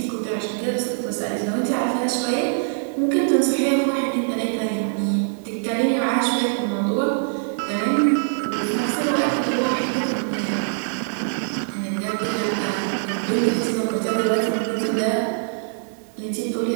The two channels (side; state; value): left; silent; digital silence